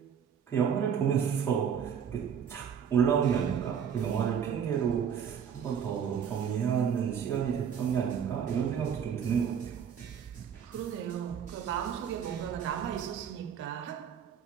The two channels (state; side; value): quieter; left; 7.9 dB